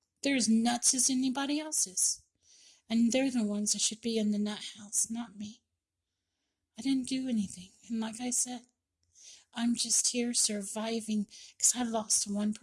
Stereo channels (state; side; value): identical; both; correlation 1.00